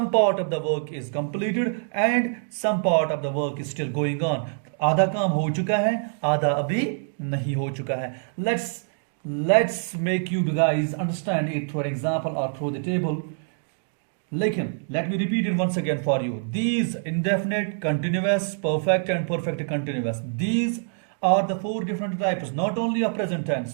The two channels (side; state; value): left; silent; digital silence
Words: part of the work is completed and some part of the work is still going on. आधा काम हो चुका है, आधा अभी नहीं हो चुका है। Let's make you guys understand it through an example or through the table. लेकिन let me repeat it once again for you. These indefinite, continuous, perfect and perfect continuous, these are the four different types, not only of present tense,